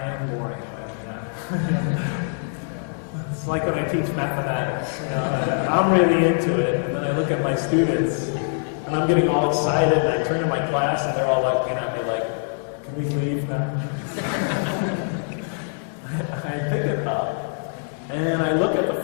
am boring, am I not? Yeah. It's like when I teach mathematics. I'm really into it, and then I look at my students, And I'm getting all excited, and I turn to my class, and they're all looking at me like, can we leave now? I pick it up, and I look at the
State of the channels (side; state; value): right; silent; digital silence